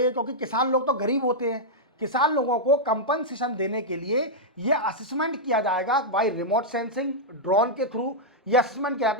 क्योंकि किसान लोग तो गरीब होते हैं, किसान लोगों को कंपनसेशन देने के लिए ये असेसमेंट किया जाएगा बाय रिमोट सेंसिंग ड्रोन के थ्रू। ये असेसमेंट किया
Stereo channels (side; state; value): both; normal; correlation -0.06